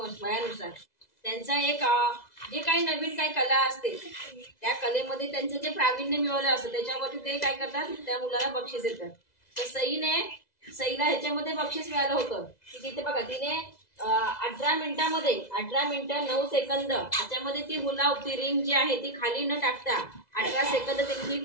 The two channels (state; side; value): late; right; 2.0 ms